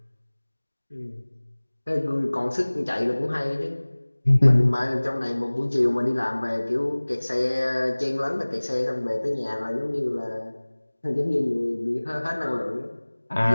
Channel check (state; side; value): inverted; both; correlation -1.00